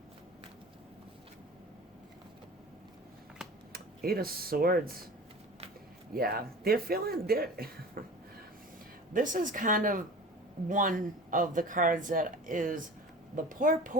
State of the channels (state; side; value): normal; both; correlation 0.38